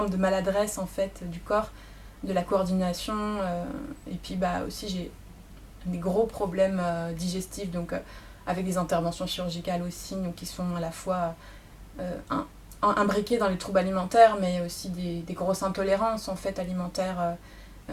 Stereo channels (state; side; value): identical; both; correlation 1.00